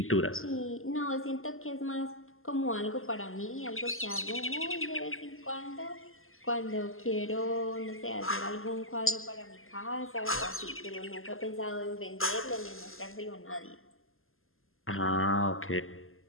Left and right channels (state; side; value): late; right; 0.61 ms